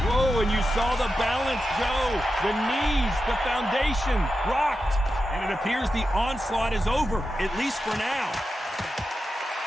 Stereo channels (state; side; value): normal; both; correlation 0.90